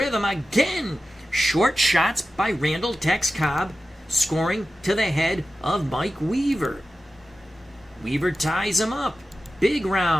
again. Short shots by Randall Tex Cobb, scoring to the head of Mike Weaver. Weaver ties him up. Big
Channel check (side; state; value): both; normal; correlation 0.93